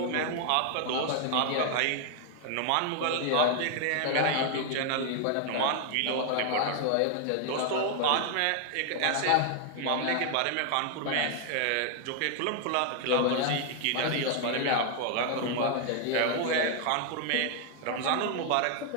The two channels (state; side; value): different; both; correlation 0.00